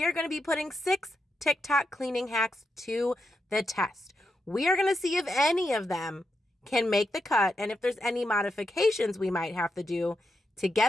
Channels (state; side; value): normal; both; correlation 0.85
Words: are going to be putting 6 TikTok cleaning hacks to the test. We are going to see if any of them can make the cut and if there's any modifications we might have to do to